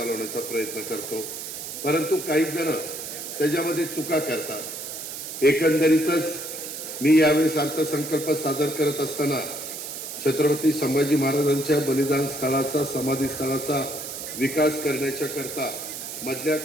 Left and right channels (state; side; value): noise; right; hiss, 8 dB below the sound